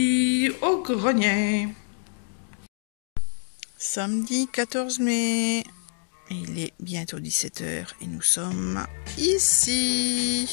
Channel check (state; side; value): silent; right; digital silence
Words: au grenier. Samedi 14 mai, il est bientôt 17 h et nous sommes